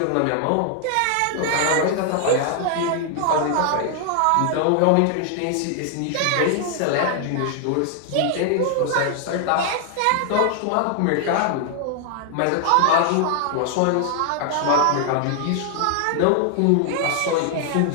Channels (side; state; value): both; different; correlation 0.00